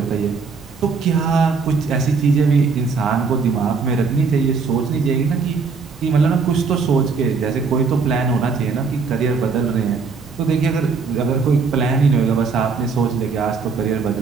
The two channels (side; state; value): left; quieter; 4.9 dB